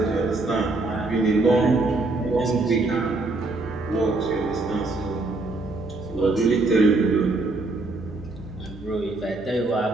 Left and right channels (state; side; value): quieter; left; 3.2 dB